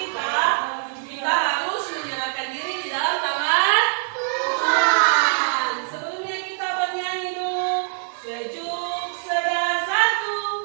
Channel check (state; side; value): silent; left; digital silence